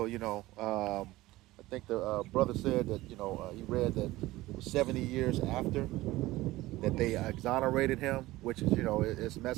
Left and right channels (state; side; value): quieter; left; 18.1 dB